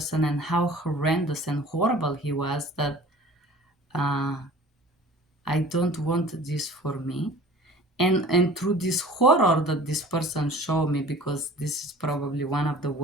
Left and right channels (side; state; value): both; normal; correlation 0.45